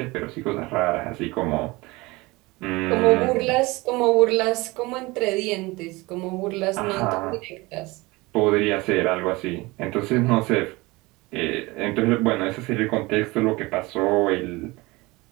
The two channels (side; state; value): left; quieter; 22.6 dB